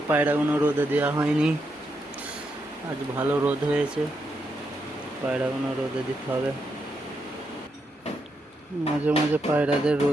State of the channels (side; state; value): both; normal; correlation 0.82